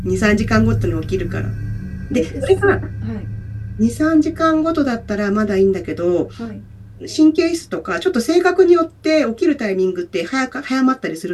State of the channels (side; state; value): both; identical; correlation 1.00